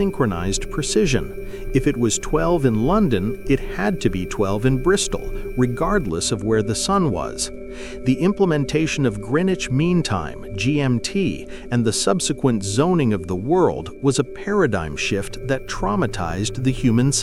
precision. If it was 12 in London, it had to be 12 in Bristol, regardless of where the sun was. The implementation of Greenwich Mean Time, GMT, and the subsequent zoning of the world was a paradigm shift that traumatized the human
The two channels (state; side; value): identical; both; correlation 1.00